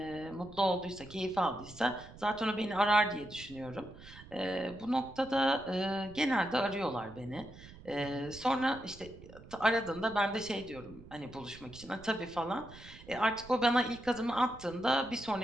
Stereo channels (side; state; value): right; noise; rumble, 18 dB below the sound